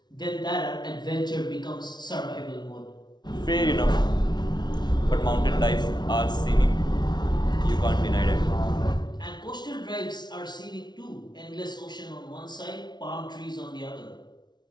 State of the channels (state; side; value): late; right; 0.20 ms